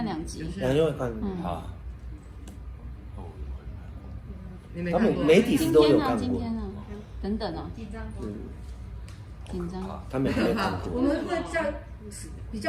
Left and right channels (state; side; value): identical; both; correlation 1.00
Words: 2集。2集会看。好。他们你没看过？媒体是都有看过，今天呢？等等哦，紧张吗？紧张。他们没看过。我们会在比